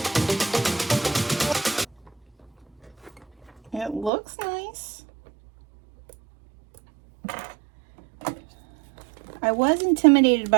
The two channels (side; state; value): left; drops out; at 4.1 s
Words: looks nice. I was intimidated